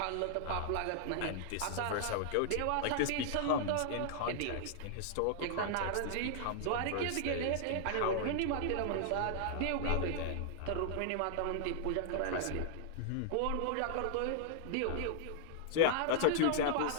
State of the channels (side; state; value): both; different; correlation -0.01